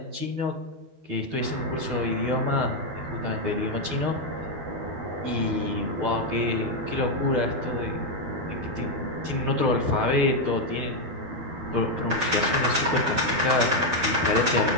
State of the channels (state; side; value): late; left; 12 ms